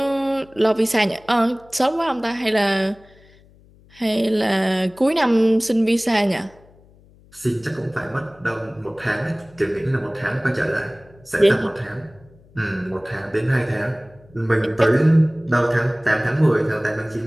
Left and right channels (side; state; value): left; noise; hum, 27 dB below the sound